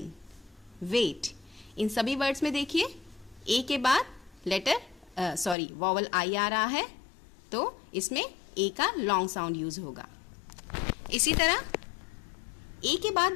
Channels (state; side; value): drops out; right; at 5.6 s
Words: wait, इन सभी वर्ड्स में देखिए ए के बाद वॉवल आई आ रहा है, तो इसमें ए का लॉन्ग साउंड यूज होगा। इसी तरह ए के बाद